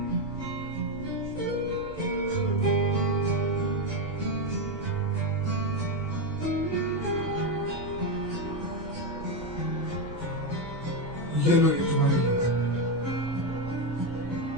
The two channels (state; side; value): noise; right; rumble, 16 dB below the sound